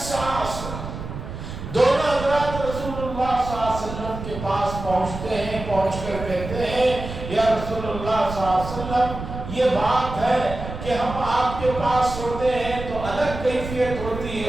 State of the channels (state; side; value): noise; right; rumble, 9 dB below the sound